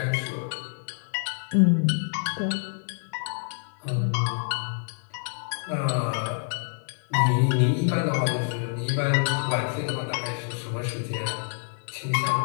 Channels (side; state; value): right; silent; 60 dB below the other